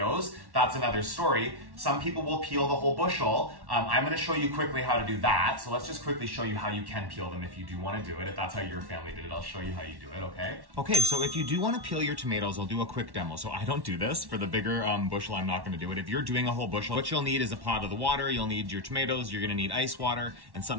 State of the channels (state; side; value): late; left; 1.1 ms